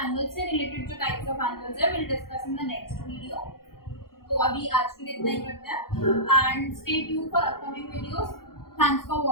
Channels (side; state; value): right; late; 0.93 ms